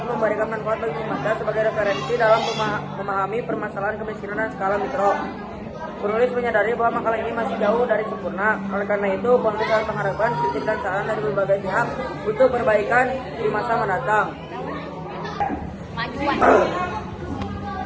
memberikan manfaat bagi pembaca sebagai referensi dalam memahami permasalahan kemiskinan dan skala mikro. Penulis menyadari bahwa makalah ini masih jauh dari sempurna. Oleh karena itu, penulis harus mengharapkan kritik dan saran dari berbagai pihak untuk perbaikan di masa mendatang.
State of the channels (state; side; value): identical; both; correlation 1.00